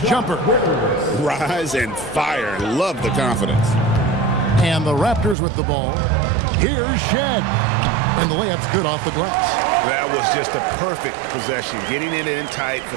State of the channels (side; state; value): left; drops out; at 5.4 s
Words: jumper. Rise and fire. Love the confidence. And the Raptors with the ball. Here's Shed. And the layup's good off the glass. That was just a perfect possession, getting it in tight for